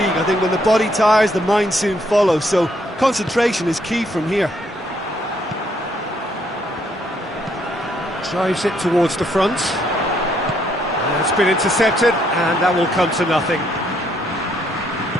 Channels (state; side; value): normal; both; correlation 0.71